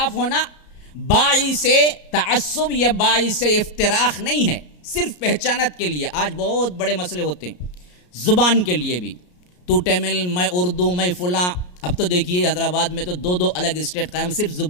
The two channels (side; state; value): right; late; 33 ms